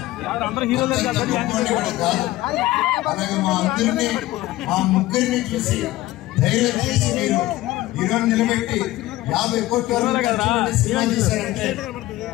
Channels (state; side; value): quieter; right; 17.0 dB